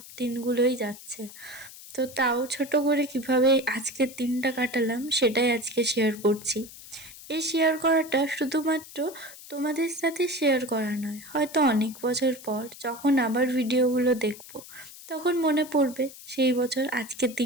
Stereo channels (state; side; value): noise; left; hiss, 17 dB below the sound